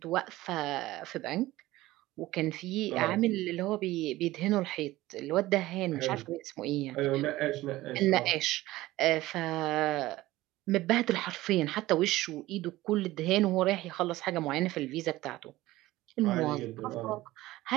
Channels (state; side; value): quieter; left; 17.4 dB